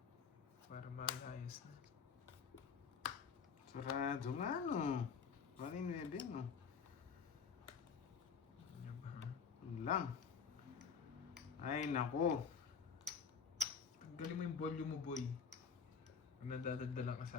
Para malayas na. Sarado nga, no? Paano yung 9, no? Ano ba? Ano lang. Ay, nako. Tanggalin mo yung volume mo, boy. Pag nadadaldalan ka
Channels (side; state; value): right; quieter; 6.1 dB